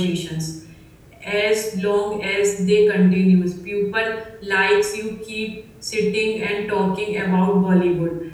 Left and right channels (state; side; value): identical; both; correlation 1.00